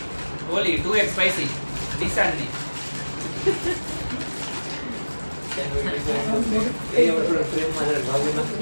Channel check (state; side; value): inverted; both; correlation -1.00